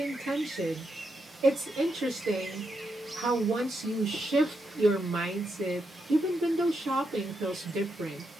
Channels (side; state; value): both; normal; correlation 0.83